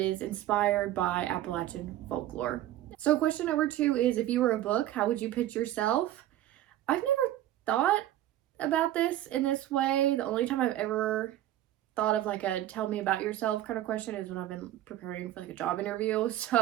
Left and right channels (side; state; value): left; quieter; 13.4 dB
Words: inspired by Appalachian folklore. So question number 2 is, if you were a book, how would you pitch yourself? I've never thought about this in this way. The only time I've ever thought of like a tell me about yourself kind of question is when I've been preparing for like a job interview.